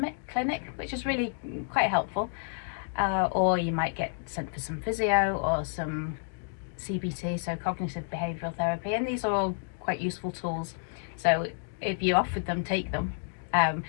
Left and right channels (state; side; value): silent; right; digital silence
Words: which is really quite helpful, or you might get sent for some physio or some CBT, so cognitive behavioural therapy, and these are all quite useful tools So if you offered them, take them.